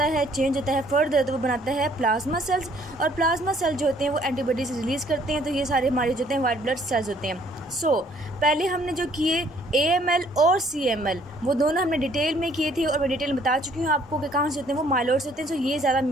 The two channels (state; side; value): normal; both; correlation 0.62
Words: है, चेंज होता है फर्दर, तो वो बनाता है प्लाज्मा सेल्स। और प्लाज्मा सेल जो होते हैं वो एंटीबॉडीज रिलीज़ करते हैं। तो ये सारे हमारे जो होते हैं वाइट ब्लड सेल्स होते हैं। पहले हमने जो किए AML और CML वो दोनों हमने डिटेल में किए थे और मैं डिटेल में बता चुकी हूँ आपको कि कहाँ से होते हैं, वो माइलॉइड से होते हैं। ये ज़्यादा